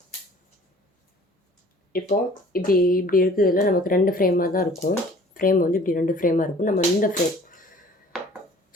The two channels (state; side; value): normal; both; correlation 0.50